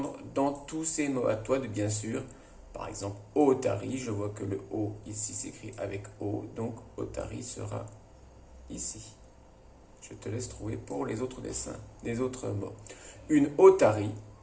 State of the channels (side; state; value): both; identical; correlation 1.00